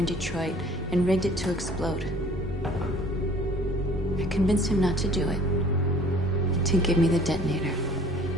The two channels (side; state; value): both; normal; correlation 0.52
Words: Detroit and rigged it to explode. I convinced him not to do it, to give me the detonator.